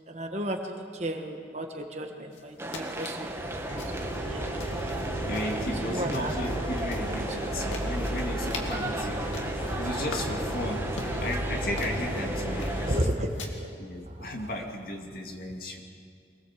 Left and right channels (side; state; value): both; normal; correlation 0.59